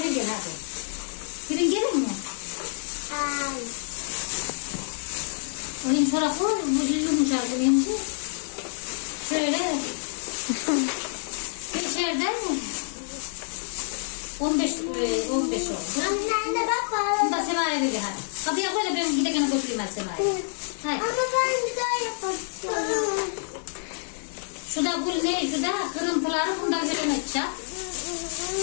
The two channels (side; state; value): right; silent; 56 dB below the other